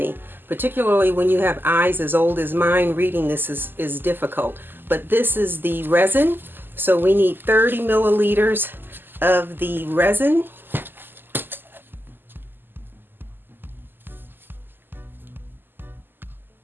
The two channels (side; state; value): left; late; 0.095 ms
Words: particularly when you have eyes as old as mine. Reading this is difficult, but this is the resin, so we need 30 milliliters of the resin.